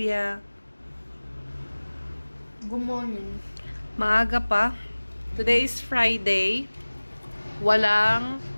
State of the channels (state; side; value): inverted; both; correlation -1.00